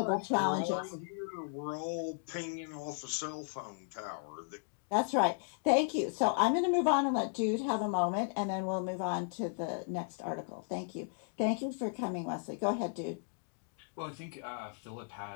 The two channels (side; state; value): right; silent; digital silence